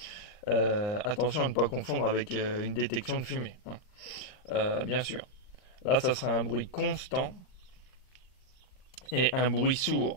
Attention à ne pas confondre avec une détection de fumée, hein. Bien sûr. Là, ça sera un bruit constant et un bruit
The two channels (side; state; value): right; late; 39 ms